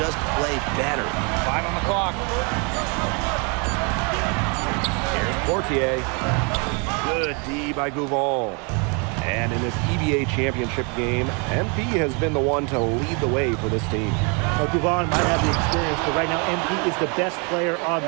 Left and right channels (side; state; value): left; quieter; 33.7 dB